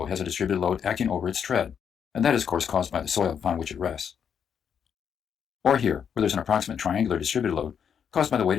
has a distributed load acting over its tread, and that is of course caused by the soil upon which it rests. Or here, where there's an approximate triangular distributed load caused by the weight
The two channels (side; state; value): right; quieter; 7.6 dB